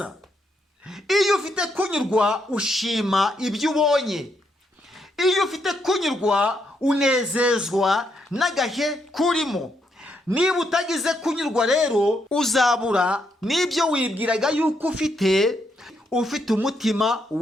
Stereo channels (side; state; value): both; normal; correlation 0.77